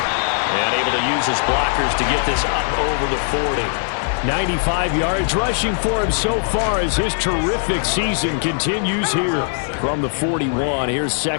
And able to use his blockers to get this up over the 40. 95 yards rushing for him so far as his terrific season continues here from the 41. Here's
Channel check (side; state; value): right; silent; 57 dB below the other